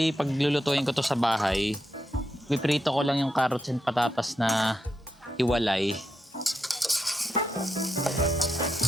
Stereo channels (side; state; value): both; normal; correlation 0.85